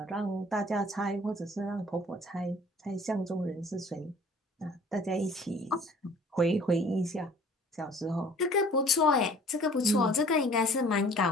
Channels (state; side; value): normal; both; correlation 0.51